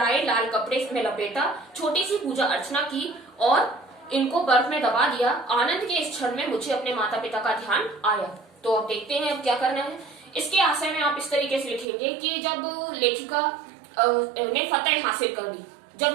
लाल कपड़े में लपेटा, छोटी सी पूजा अर्चना की और इनको बर्फ में दबा दिया। आनंद के इस क्षण में मुझे अपने माता पिता का ध्यान आया। तो अब देखते हैं अब क्या करना है। इसके आशय में आप इस तरीके से लिखेंगे कि जब लेखिका ने फतेह हासिल कर ली, जब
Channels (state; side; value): drops out; left; at 11.9 s